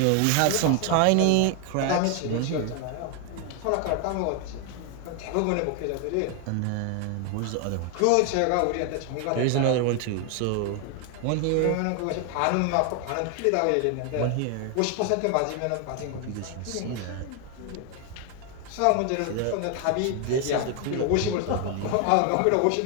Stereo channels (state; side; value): different; both; correlation 0.01